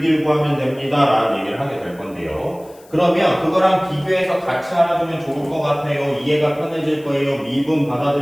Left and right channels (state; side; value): noise; left; hiss, 27 dB below the sound